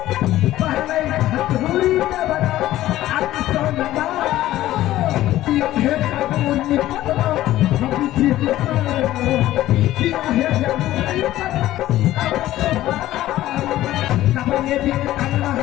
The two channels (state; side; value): quieter; right; 14.7 dB